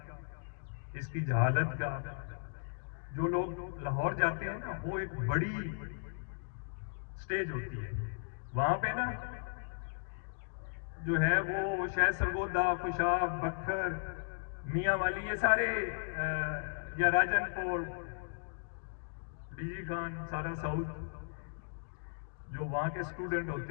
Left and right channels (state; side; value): silent; right; digital silence